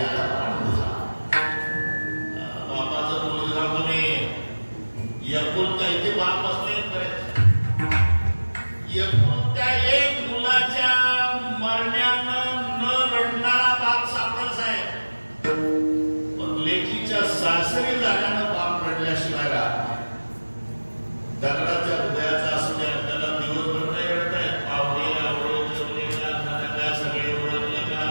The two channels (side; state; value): both; inverted; correlation -1.00